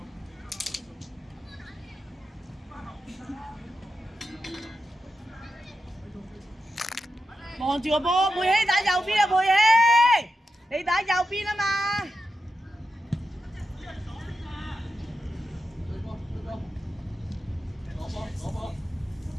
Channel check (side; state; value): both; normal; correlation 0.89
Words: 望住個波，佩希打右邊啊！佩希，你打右邊啊嘛！